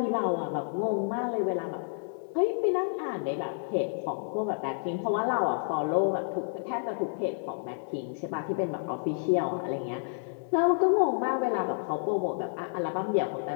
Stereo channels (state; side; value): silent; right; digital silence